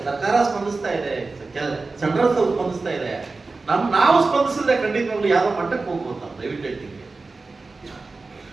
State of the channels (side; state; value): left; quieter; 3.8 dB